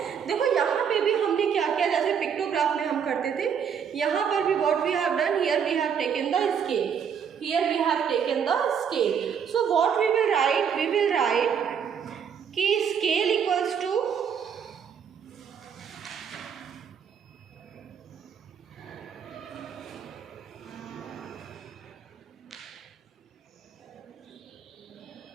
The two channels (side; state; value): left; quieter; 7.4 dB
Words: देखो यहाँ पे भी हमने क्या किया, जैसे पिक्टोग्राफ में हम करते थे, यहाँ पर भी what we have done, here we have taken the scale, here we have taken the scale. So what we will write कि स्केल इक्वल्स टू